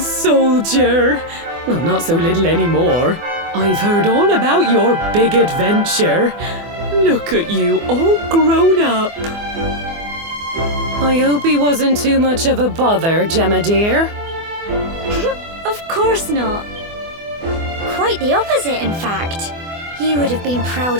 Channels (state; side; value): late; left; 24 ms